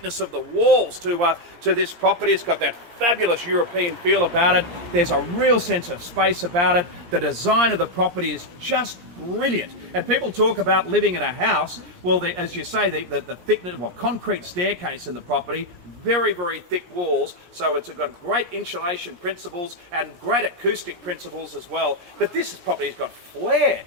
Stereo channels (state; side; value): late; left; 17 ms